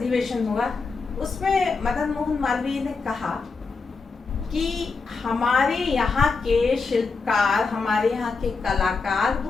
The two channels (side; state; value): right; quieter; 4.5 dB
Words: हुआ उसमें मदन मोहन मालवीय ने कहा कि हमारे यहाँ के शिल्पकार, हमारे यहाँ के कलाकार